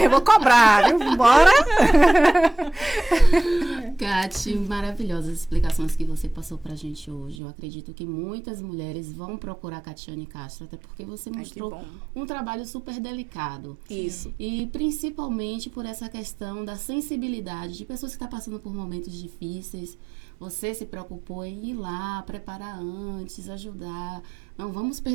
eu vou cobrar, viu? Bora! Kati, maravilhosas explicações que você passou pra gente hoje. Eu acredito que muitas mulheres vão procurar Catiane Castro, até porque você mostrou um trabalho super delicado. Isso. E principalmente por essa questão da sensibilidade de pessoas que estão passando por momentos difíceis. Você se preocupou em ir lá, preparar antes, ajudar. Não, vamos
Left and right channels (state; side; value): drops out; left; at 7.4 s